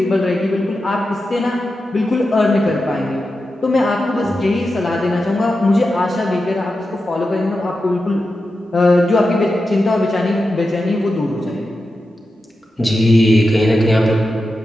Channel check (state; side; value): normal; both; correlation 0.90